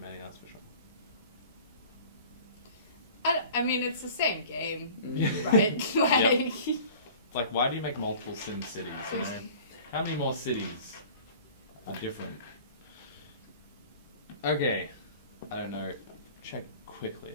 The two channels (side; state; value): both; inverted; correlation -0.45